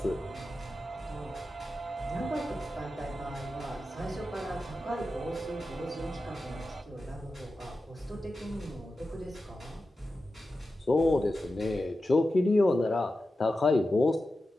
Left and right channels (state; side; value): normal; both; correlation 0.92